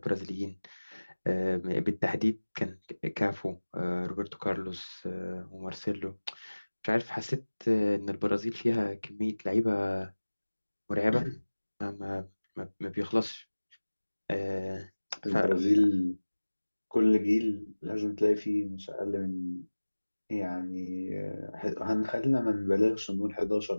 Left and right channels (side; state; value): both; inverted; correlation -1.00